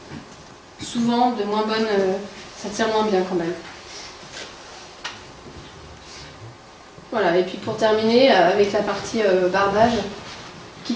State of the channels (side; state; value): both; identical; correlation 1.00